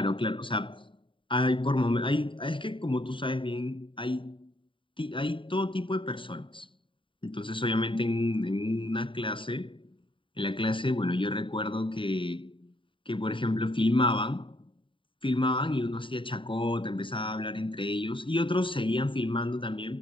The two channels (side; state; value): right; late; 0.25 ms